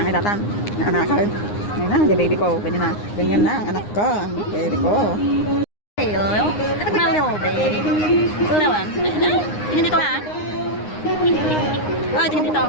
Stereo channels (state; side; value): late; right; 9.7 ms